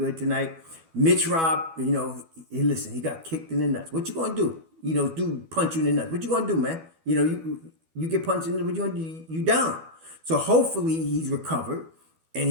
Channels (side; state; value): left; late; 12 ms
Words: tonight. Mitch Rob, you know, listen, he got kicked in the nuts. What you going to do? You know, dude punch you in the nuts. What you going to do, man? You know, you get punched in the nuts, what you going to do? You down. So hopefully he's recovered and